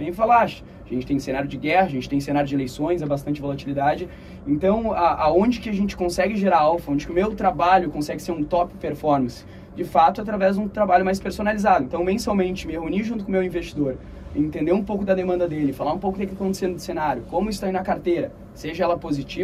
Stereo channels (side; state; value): both; identical; correlation 1.00